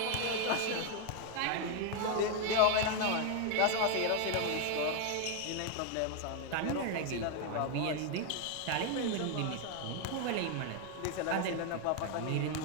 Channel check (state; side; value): different; both; correlation 0.01